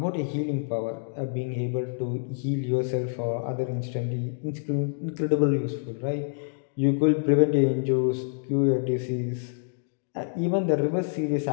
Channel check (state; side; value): silent; right; digital silence